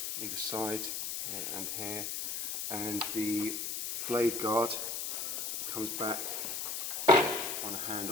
either side, here and here. And the blade guard comes back on a hand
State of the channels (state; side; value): noise; left; hiss, 2 dB below the sound